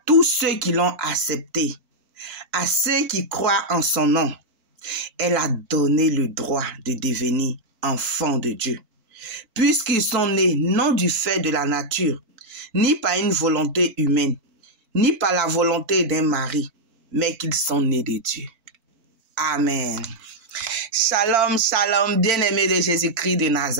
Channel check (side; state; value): left; late; 4.5 ms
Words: tous ceux qui l'ont acceptée, à ceux qui croient en son nom, elle a donné le droit de devenir enfants de Dieu, puisqu'ils sont nés non du fait de la nature, ni par une volonté humaine, ni par la volonté d'un mari, mais qu'ils sont nés de Dieu. Amen. Shalom, shalom, bien-aimés de Jésus-Christ de